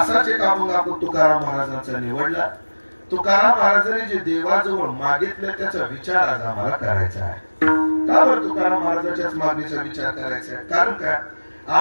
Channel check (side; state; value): both; inverted; correlation -1.00